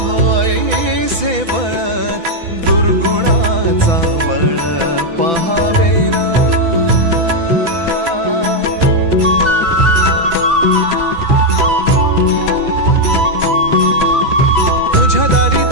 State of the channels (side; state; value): left; late; 6.0 ms